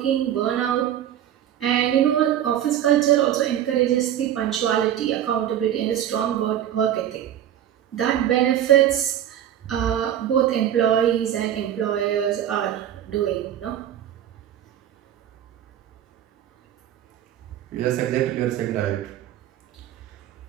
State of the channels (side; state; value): left; quieter; 11.0 dB